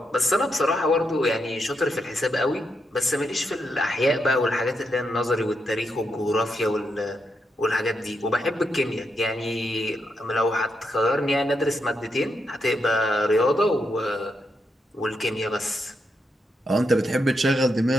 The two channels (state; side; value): normal; both; correlation 0.82